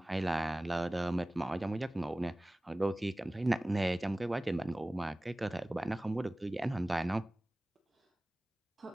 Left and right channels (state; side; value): normal; both; correlation 0.98